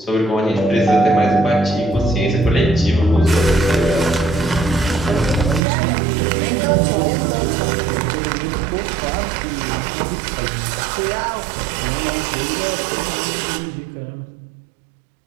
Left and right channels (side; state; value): left; drops out; at 5.6 s